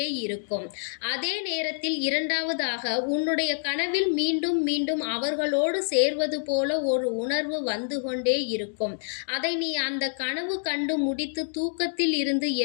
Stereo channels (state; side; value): silent; right; digital silence